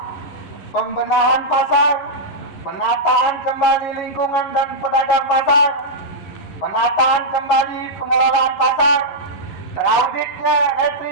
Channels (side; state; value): right; late; 11 ms